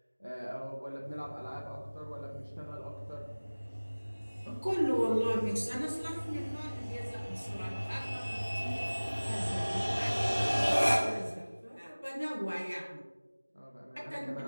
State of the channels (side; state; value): both; inverted; correlation -1.00